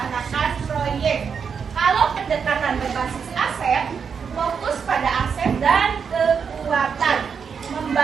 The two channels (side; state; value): left; quieter; 6.4 dB